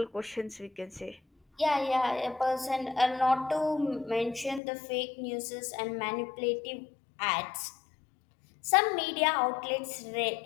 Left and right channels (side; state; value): right; drops out; at 4.6 s